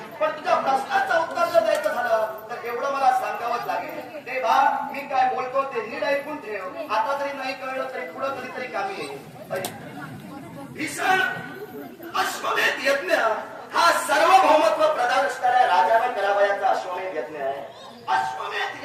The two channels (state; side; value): identical; both; correlation 1.00